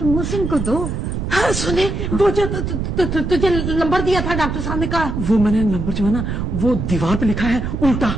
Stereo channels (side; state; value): right; noise; rumble, 3 dB below the sound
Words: मोहसिन को दो। हाँ सुने, वो जो तुझे नंबर दिया था डॉक्टर साहब ने कहा, वो मैंने नंबर जो है ना वो दीवार पे लिखा है उल्टा।